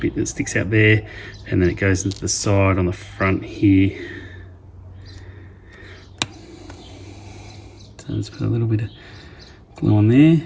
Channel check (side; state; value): both; identical; correlation 1.00